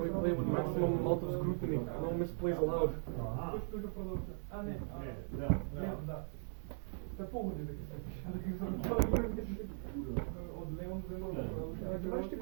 we play with maximum amount of scrutiny. No misplays allowed. Се погоди дека се пише. Од Леон земја. Гледаш ти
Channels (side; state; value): left; silent; digital silence